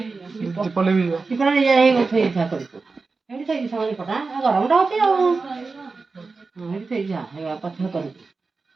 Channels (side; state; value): left; quieter; 4.2 dB